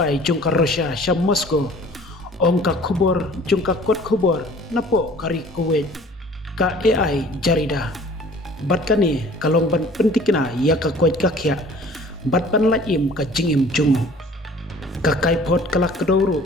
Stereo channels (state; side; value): normal; both; correlation 0.50